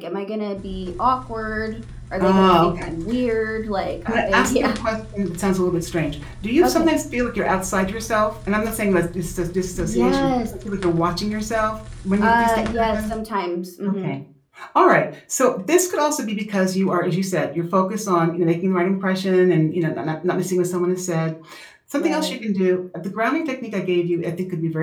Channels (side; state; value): both; identical; correlation 1.00